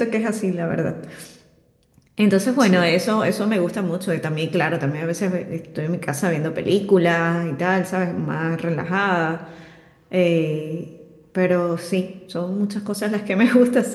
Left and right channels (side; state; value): both; identical; correlation 1.00